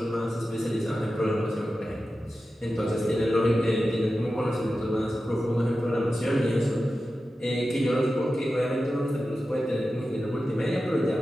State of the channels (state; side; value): normal; both; correlation 0.93